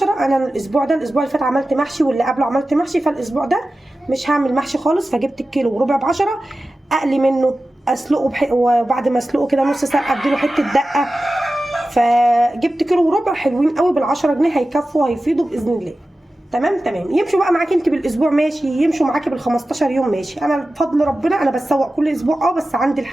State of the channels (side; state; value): both; normal; correlation 0.94